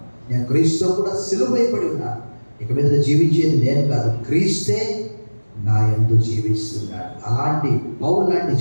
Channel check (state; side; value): inverted; both; correlation -1.00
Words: నేను క్రీస్తుతో కూడా సిలువైపడి ఉన్నాను. ఇక మీద జీవించేది నేను కాదు, క్రీస్తే నా యందు జీవిస్తున్నాడు. అలాంటి పౌలు లాంటి